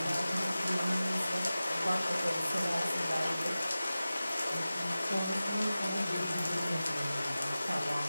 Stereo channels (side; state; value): both; inverted; correlation -0.96